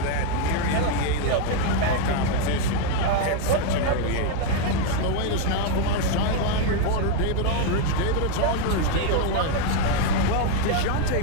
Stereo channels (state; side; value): different; both; correlation 0.01